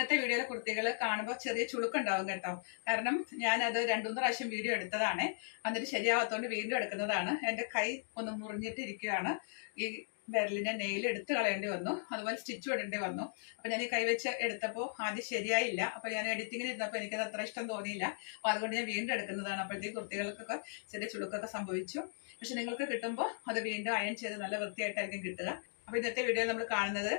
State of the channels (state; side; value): silent; right; digital silence